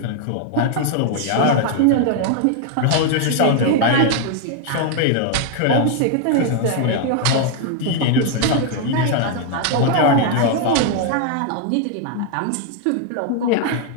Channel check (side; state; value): both; different; correlation 0.00